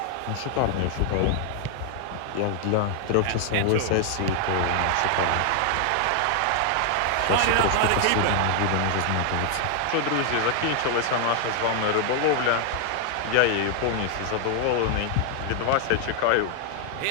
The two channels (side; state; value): both; different; correlation 0.00